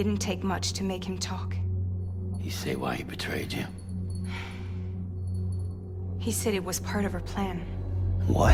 take much to make him talk. You say why he betrayed you? He said it was part of her plan.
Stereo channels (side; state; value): both; identical; correlation 1.00